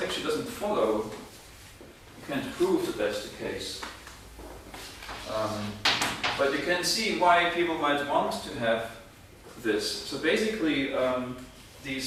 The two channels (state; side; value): identical; both; correlation 1.00